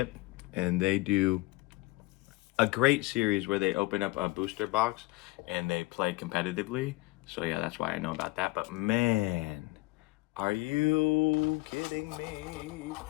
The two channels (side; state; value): right; quieter; 21.7 dB